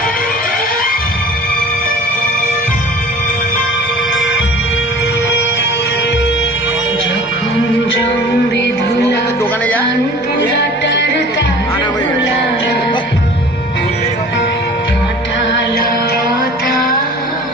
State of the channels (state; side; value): normal; both; correlation 0.44